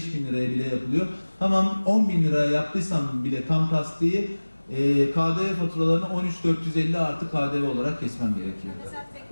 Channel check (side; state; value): both; inverted; correlation -1.00